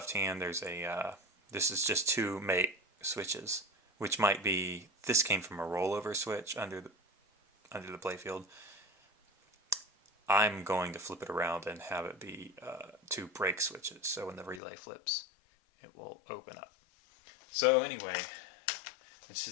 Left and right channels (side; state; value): right; drops out; at 14.6 s